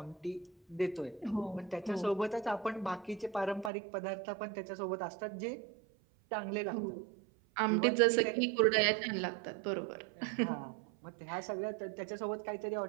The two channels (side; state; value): left; drops out; at 3.7 s